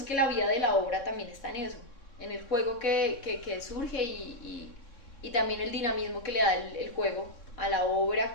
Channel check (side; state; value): right; late; 3.6 ms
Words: que la vida de la obra también está en eso, en el juego que surge y también el dinamismo que le da el juego a la obra,